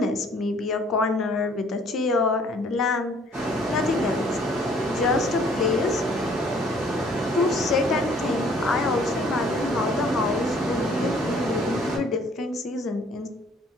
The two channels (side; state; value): both; normal; correlation 0.58